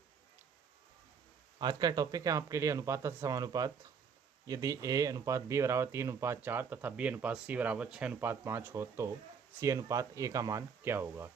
आज का topic है आपके लिए अनुपात तथा समानुपात। यदि ए अनुपात बी बराबर 3:4 तथा बी अनुपात सी बराबर 6:5 हो तो सी अनुपात ए का मान क्या होगा।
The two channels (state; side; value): quieter; left; 6.4 dB